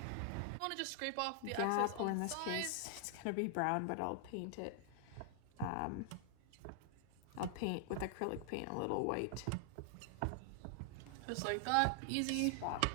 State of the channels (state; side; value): different; both; correlation 0.00